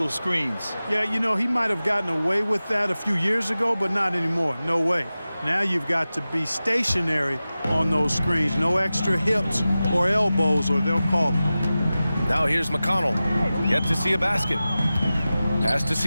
screens. Yeah, you know, he might have gotten away with that a few years ago, but not anymore. No way. Now you've got to be stationary on those screens. No extra hips or elbows, or they'll call it. Now here's McConnell. Yet to see a basket. Pass to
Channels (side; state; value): both; inverted; correlation -0.95